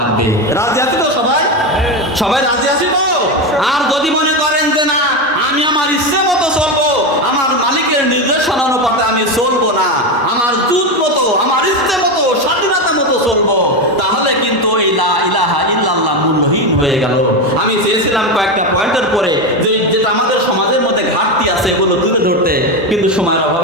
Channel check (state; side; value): normal; both; correlation 0.14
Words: রাজি আছি তো সবাই? সবাই রাজি আছি তো? আর যদি মনে করেন যে না, আমি আমার ইচ্ছে মতো চলবো, আমার মালিকের নির্দেশনা অনুপাতে আমি চলবো না, আমার জুত মতো, আমার ইচ্ছে মতো, স্বাধীনতা মতো চলবো, তাহলে কিন্তু এই লা ইলাহা ইল্লাল্লাহ মূল্যহীন হয়ে গেল। আমি চেয়েছিলাম কয়েকটা পয়েন্টের পরে যে যেটা আমাদের সমাজের মধ্যে ঘাটতি আছে এগুলো তুলে ধরতে, কিন্তু সময়ের